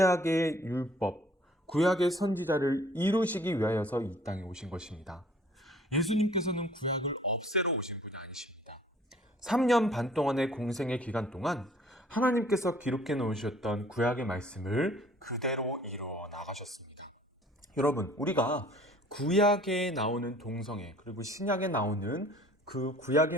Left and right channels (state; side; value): normal; both; correlation 0.54